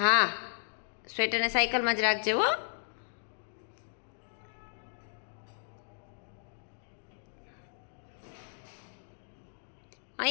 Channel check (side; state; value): right; silent; digital silence